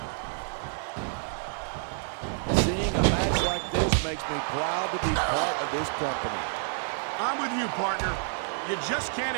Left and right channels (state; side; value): silent; left; digital silence